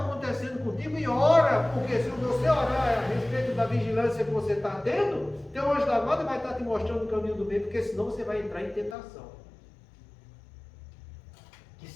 acontecendo contigo e ora, porque se você orar a respeito da vigilância que você está tendo, teu anjo da guarda vai estar te mostrando o caminho do bem, porque senão você vai entrar em tentação. Que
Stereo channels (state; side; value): drops out; right; at 9.0 s